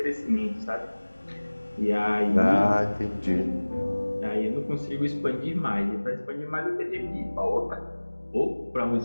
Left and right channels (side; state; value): both; inverted; correlation -1.00